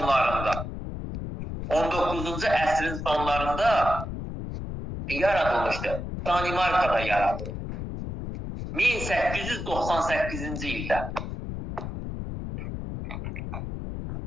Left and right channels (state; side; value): noise; left; rumble, 6 dB below the sound